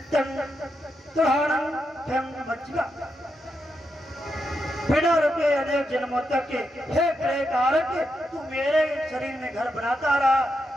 तुहाणं फं मज्जिका। बिना रुके अनेक जन्मों तक के हे ग्रह कारक, तू मेरे शरीर में घर बनाता रहा,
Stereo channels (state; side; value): normal; both; correlation 0.84